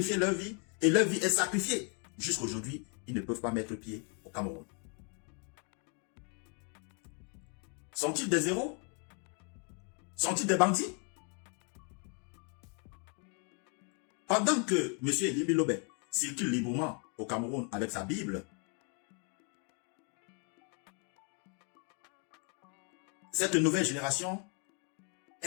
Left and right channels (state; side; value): quieter; right; 38.3 dB